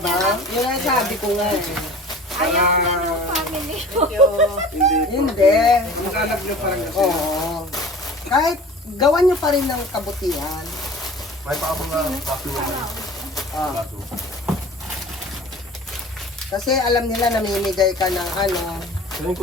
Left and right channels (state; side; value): normal; both; correlation 0.43